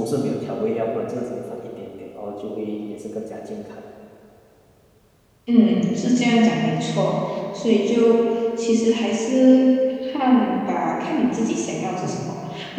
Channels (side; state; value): both; identical; correlation 1.00